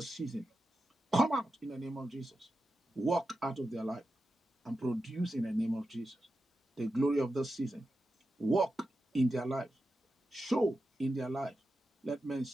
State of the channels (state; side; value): normal; both; correlation 0.90